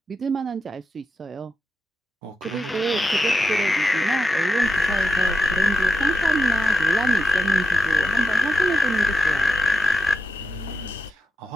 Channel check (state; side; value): normal; both; correlation 0.88